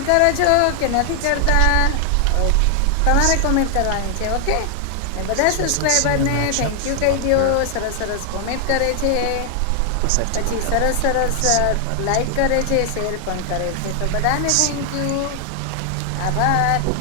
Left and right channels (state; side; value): different; both; correlation 0.00